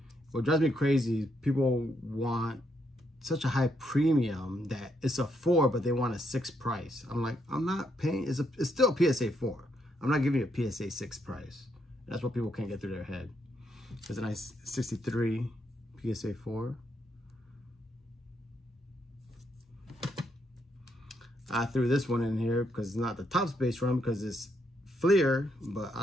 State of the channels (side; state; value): both; normal; correlation 0.77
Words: What drives me crazy is people want such a high premium that it's a 4, but they want a 6 price. I'm like, I'm not paying. It's still a PSA 4. I'm not giving you a PSA 6 price. That's what people can't get through their head. There's a nice 63 PSA 4. I threw this one in here because it's not the top space run because it's Fleer, but I